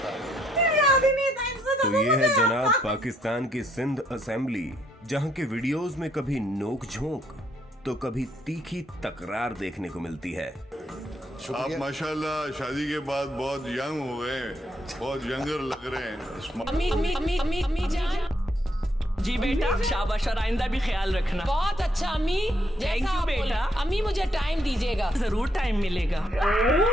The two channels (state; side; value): normal; both; correlation 0.72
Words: है। तो ये है जनाब पाकिस्तान की सिंध असेंबली, जहां के वीडियोस में कभी नोक झोंक तो कभी तीखी तकरार देखने को मिलती है। आप माशाल्लाह शादी के बाद बहुत यंग हो गए, बहुत यंगर लग रहे हैं। अम्मी जान जी बेटा, शाबाश, और आइंदा भी ख्याल रखना। बहुत अच्छा अम्मी, थैंक यू बेटा। अम्मी मुझे टाइम दीजिएगा। जरूर टाइम मिलेगा।